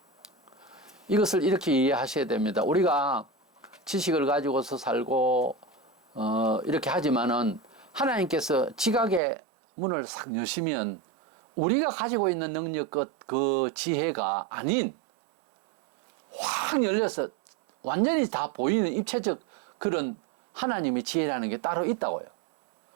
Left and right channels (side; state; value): left; drops out; at 9.2 s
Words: 이것을 이렇게 이해하셔야 됩니다. 우리가 지식을 가지고서 살고 이렇게 하지만은 하나님께서 지각의 문을 싹 여시면 우리가 가지고 있는 능력 그 지혜가 아닌 확 열려서 완전히 다 보이는 입체적 그런 하나님의 지혜라는 게 따로 있다고요.